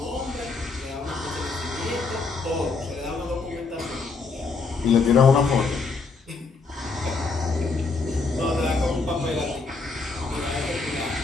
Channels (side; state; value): right; quieter; 4.2 dB